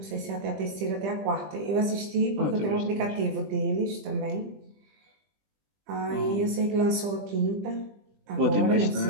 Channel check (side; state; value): left; late; 20 ms